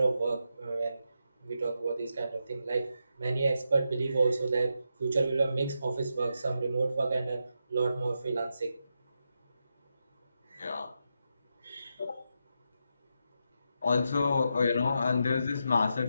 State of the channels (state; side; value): inverted; both; correlation -0.84